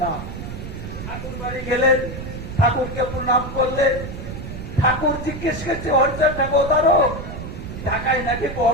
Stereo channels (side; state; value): right; noise; rumble, 8 dB below the sound